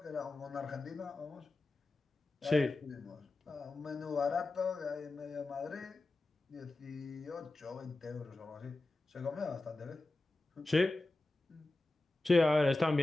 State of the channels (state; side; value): quieter; right; 3.0 dB